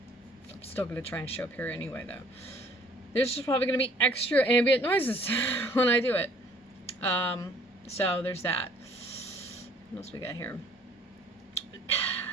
I'm still going to try and show up here anyway, though. There's just probably going to be extra ambient noises when I do it. So there's that. What else we got here?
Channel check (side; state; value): both; normal; correlation 0.58